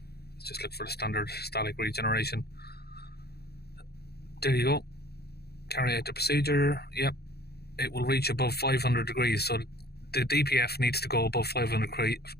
Let's just look for the standard static regeneration. There you go. Carry out the procedure. Yep, it will reach above 500 degrees. So the DPF needs to go above 500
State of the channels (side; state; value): right; late; 0.47 ms